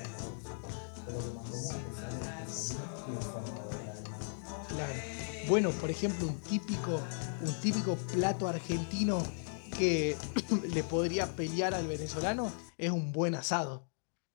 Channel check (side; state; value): right; silent; digital silence